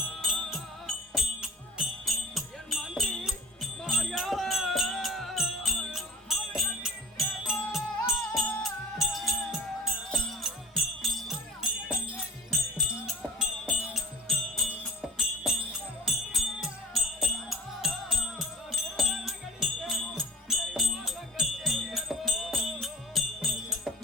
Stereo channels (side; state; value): both; normal; correlation 0.43